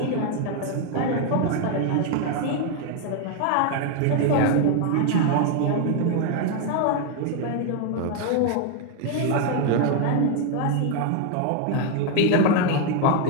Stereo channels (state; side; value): different; both; correlation 0.01